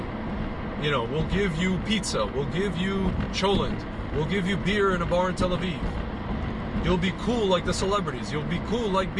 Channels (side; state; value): both; identical; correlation 1.00